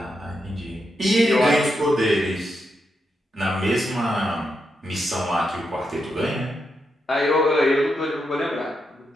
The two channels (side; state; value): both; normal; correlation 0.84